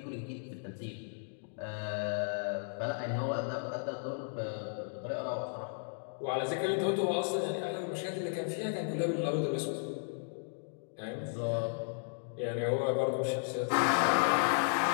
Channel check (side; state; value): right; silent; digital silence